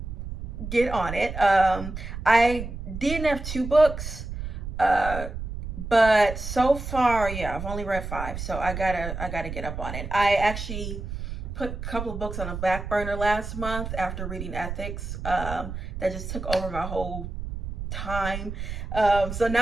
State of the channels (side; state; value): right; noise; rumble, 7 dB below the sound